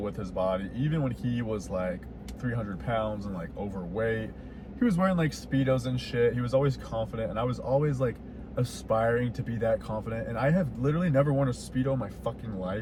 with his body, even when he was like 300 pounds and like overweight. He was wearing like Speedos and shit. He was always confident, and I was always like aspiring to be that confident. And I have literally never worn a Speedo in my fucking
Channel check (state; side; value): identical; both; correlation 1.00